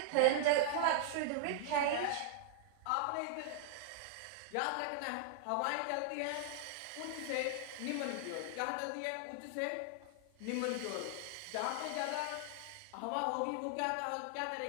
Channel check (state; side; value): different; both; correlation -0.01